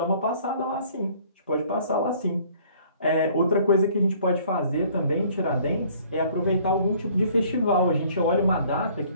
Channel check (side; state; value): both; inverted; correlation -0.57